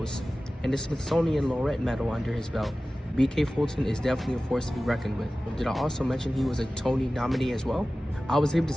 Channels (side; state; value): both; normal; correlation 0.96